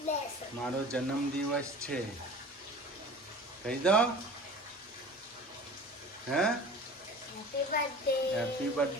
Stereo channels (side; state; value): both; normal; correlation 0.40